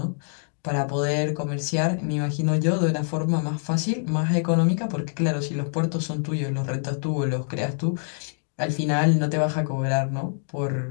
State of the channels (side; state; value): right; silent; 62 dB below the other